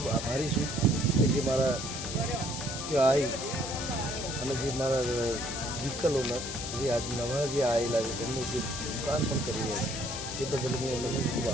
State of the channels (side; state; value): left; noise; hiss, 7 dB below the sound